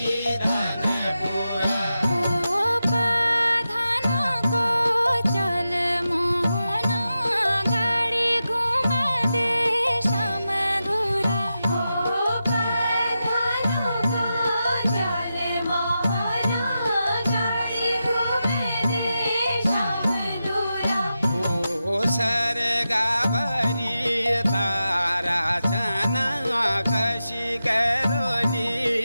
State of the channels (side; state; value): both; inverted; correlation -0.90